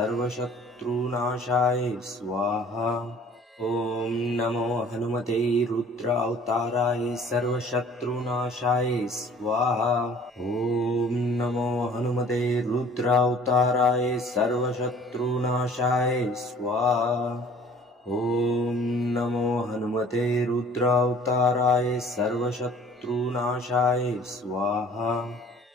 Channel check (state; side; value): normal; both; correlation 0.52